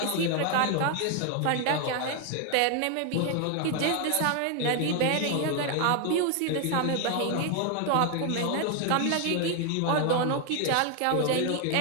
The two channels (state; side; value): different; both; correlation 0.01